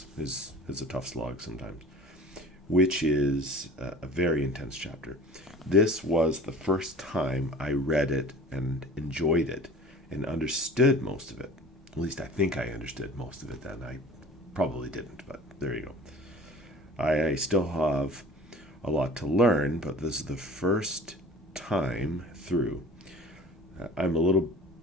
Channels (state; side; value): normal; both; correlation 0.43